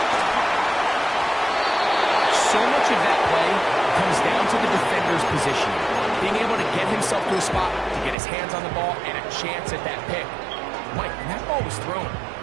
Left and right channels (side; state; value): left; drops out; at 8.2 s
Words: So much of that play comes down to the defender's position. Being able to get himself to a spot, to get his hands on the ball, and a chance at that pick. Mike, when that ball was thrown,